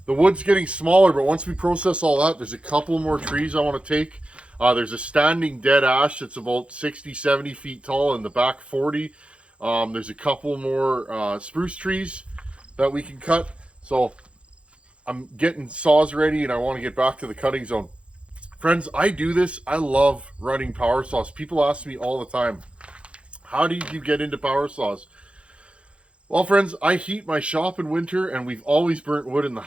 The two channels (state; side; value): late; left; 0.060 ms